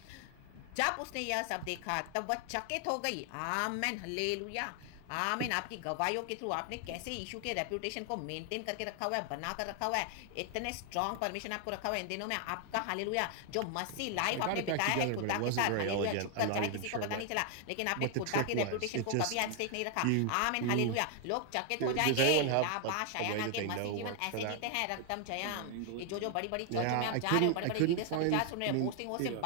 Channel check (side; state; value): both; different; correlation 0.00